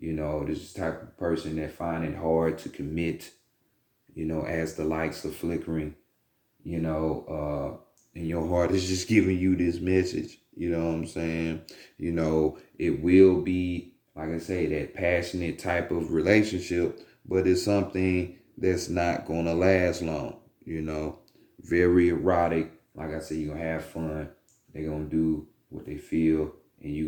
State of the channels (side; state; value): both; identical; correlation 1.00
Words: know, this is the type of person that find it hard to commit, you know, as the lights are flickering, you know, and your heart is just giving you this message. You know what I'm saying? You know, it will be, like I say, that passionate type of relationship, but it's something that's not going to last long, you know. Very erotic. Like I said, you're going to have fun. They're going to do what they feel, and you're